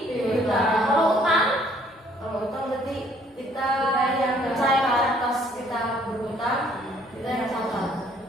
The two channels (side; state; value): both; normal; correlation 0.62